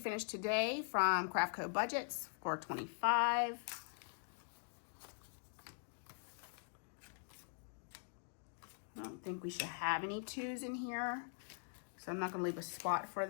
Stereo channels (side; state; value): right; silent; digital silence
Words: today from Craft Co Budgets for $25. I don't think we should have any 2s in here, so I'm not going to leave a spot for